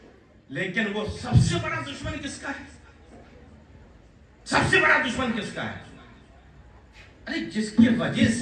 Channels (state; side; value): identical; both; correlation 1.00